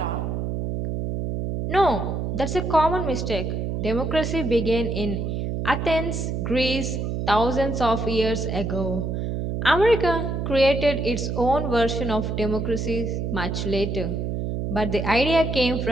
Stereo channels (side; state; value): right; noise; hum, 2 dB below the sound